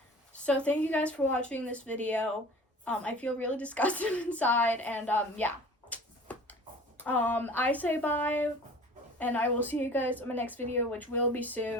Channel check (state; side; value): normal; both; correlation 0.43